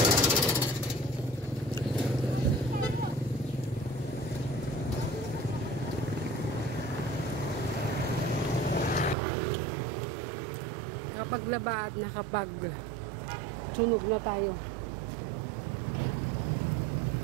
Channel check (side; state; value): left; drops out; at 9.2 s